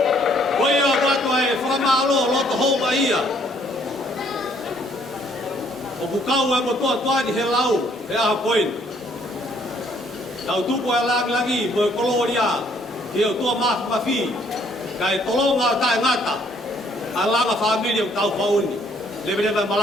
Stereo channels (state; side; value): normal; both; correlation 0.65